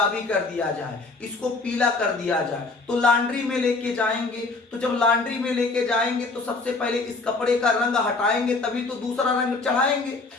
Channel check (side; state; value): right; quieter; 3.7 dB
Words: कर दिया जाए, इसको पीला कर दिया जाए, तो लॉन्ड्री में लेके जाएंगे। तो जब लॉन्ड्री में लेके जाएंगे तो सबसे पहले इस कपड़े का रंग हटाएंगे, तभी तो दूसरा रंग चढ़ाएंगे।